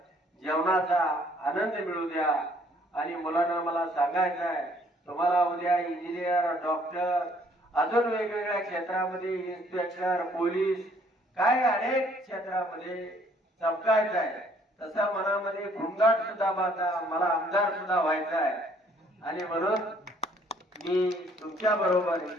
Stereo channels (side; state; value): both; normal; correlation 0.62